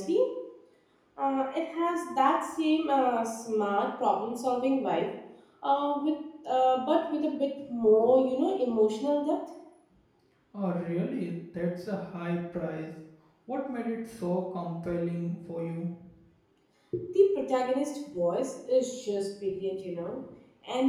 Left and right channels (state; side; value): identical; both; correlation 1.00